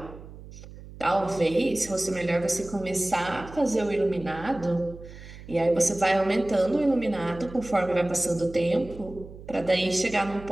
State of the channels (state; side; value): noise; right; hum, 16 dB below the sound